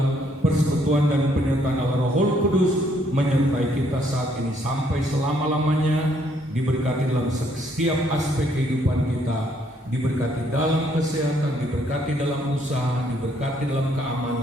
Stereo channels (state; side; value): normal; both; correlation 0.68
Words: persekutuan dan penyertaan Allah Roh Kudus menyertai kita saat ini sampai selama-lamanya, diberkati dalam setiap aspek kehidupan kita, diberkati dalam kesehatan, diberkati dalam usaha, diberkati dalam